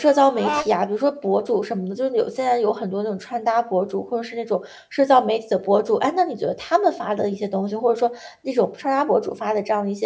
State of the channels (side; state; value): both; identical; correlation 1.00